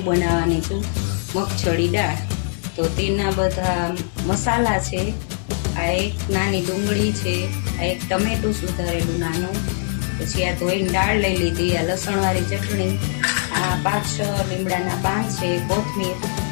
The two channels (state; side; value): silent; right; digital silence